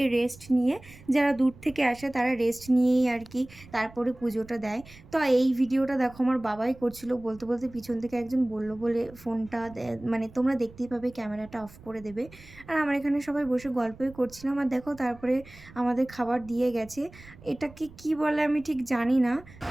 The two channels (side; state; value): right; noise; rumble, 21 dB below the sound